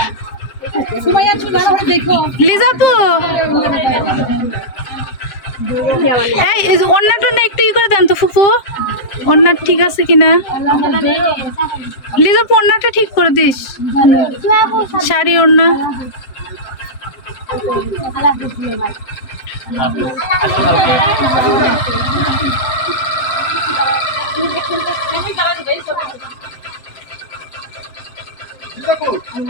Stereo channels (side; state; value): right; late; 7.6 ms